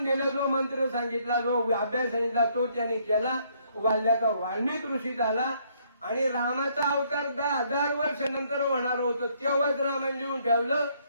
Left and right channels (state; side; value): inverted; both; correlation -0.67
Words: दिलं, जो मंत्र सांगितला, जो अभ्यास सांगितला, तो त्याने केला. वाल्याचा वाल्मिक ऋषी झाला. आणि रामाचा अवतार 10,000 वर्ष नंतर होणार होतं, तेव्हाच रामाने लिहून ठेवलं.